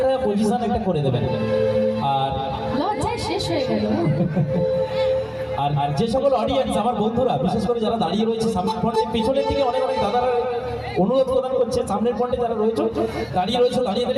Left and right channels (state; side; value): identical; both; correlation 1.00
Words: পজিশন একটা করে দেবেন। আর লজ্জায় শেষ হয়ে গেল। আর যে সকল অডিয়েন্স, আমার বন্ধুরা, বিশেষ করে যারা দাঁড়িয়ে রয়েছে সামনের ফ্রন্টে, পিছনের দিকে অনেক অনেক দাদারা অনুরোধ প্রদান করছে, সামনের ফ্রন্টে যারা রয়েছে দাঁড়িয়ে